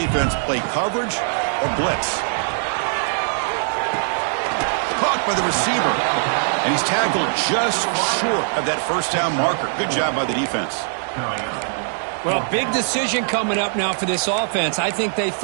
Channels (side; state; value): left; silent; digital silence